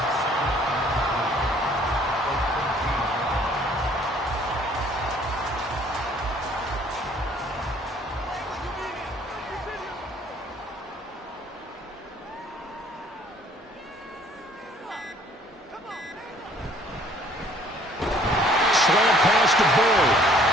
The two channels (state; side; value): normal; both; correlation 0.58